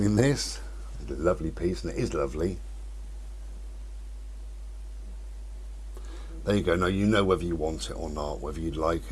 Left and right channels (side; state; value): both; identical; correlation 1.00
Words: this lovely piece, and it is lovely. There you go. Now you know whether you want it or not, whether you like